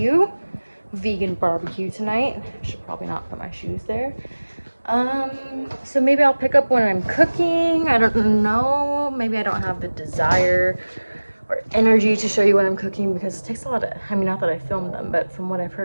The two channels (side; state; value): both; inverted; correlation -1.00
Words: vegan barbecue tonight. Should probably not put my shoes there. So maybe I'll pick up when I'm cooking. I don't know. Maybe I don't have the desire or energy to show you when I'm cooking because it takes a lot of, I mean, not that I filmed them, but from what I've